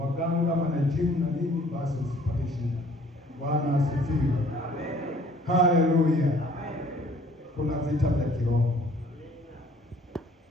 kama na jimu na nini, basi usipate shida. Bwana asifiwe. Amen. Haleluya. Amen. Kuna vita vya kiroho.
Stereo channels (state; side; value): normal; both; correlation 0.56